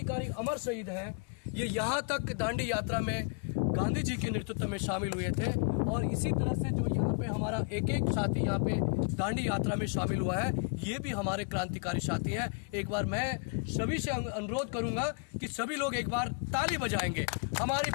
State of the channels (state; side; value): quieter; right; 38.7 dB